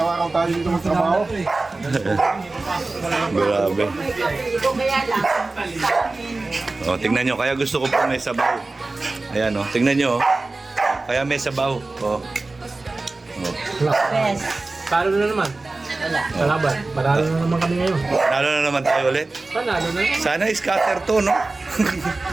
tayo dito magtrabaho. Grabe. Ito kaya lang. O, tingnan nyo, kaya gusto ko po may sabaw. Ayan, tingnan nyo. Kaya may sabaw. Best. Talo na naman. Wala. Kalaban. Panalo na naman kami ngayon. Lalo na naman tayo ulit. Panalo na naman. Sana scatter to, no?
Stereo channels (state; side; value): quieter; left; 3.3 dB